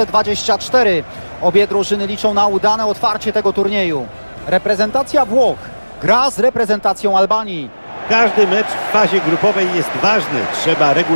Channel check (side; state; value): both; inverted; correlation -1.00